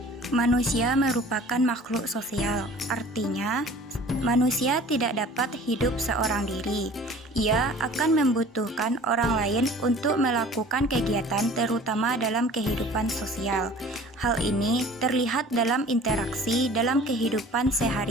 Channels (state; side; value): normal; both; correlation 0.46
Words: Manusia merupakan makhluk sosial, artinya manusia tidak dapat hidup seorang diri. Ia akan membutuhkan orang lain untuk melakukan kegiatan terutama dalam kehidupan sosial. Hal ini terlihat dalam interaksi dalam kehidupan